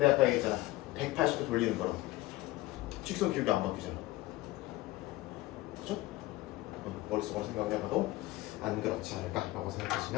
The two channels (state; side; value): quieter; right; 18.5 dB